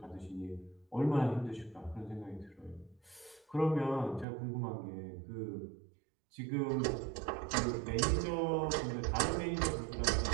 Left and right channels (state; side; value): drops out; left; at 4.2 s